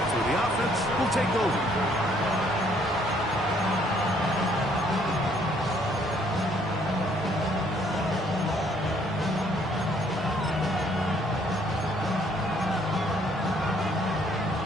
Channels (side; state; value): both; normal; correlation 0.65